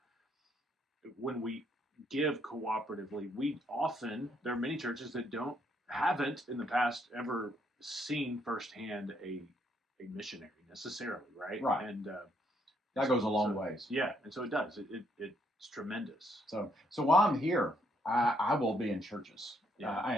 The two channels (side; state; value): both; normal; correlation 0.71